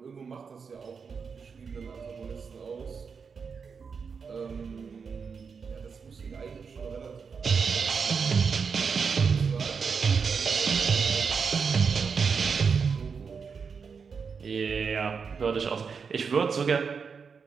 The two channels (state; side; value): quieter; left; 5.7 dB